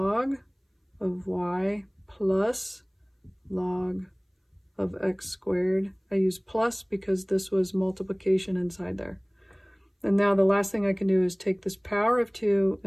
of y plus log of x squared. I use plus because this was multiplication inside there. And now the last thing I can do is take this power of 2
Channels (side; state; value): both; identical; correlation 1.00